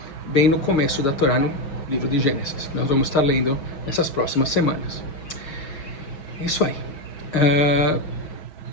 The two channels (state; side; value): late; right; 6.4 ms